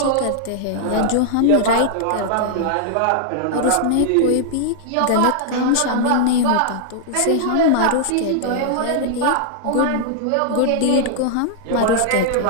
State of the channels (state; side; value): different; both; correlation -0.01